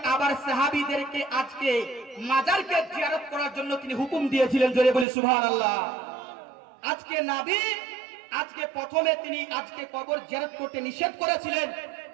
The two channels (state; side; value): drops out; left; at 5.1 s